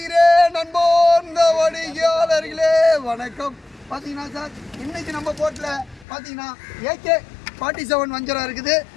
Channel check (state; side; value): drops out; right; at 6.1 s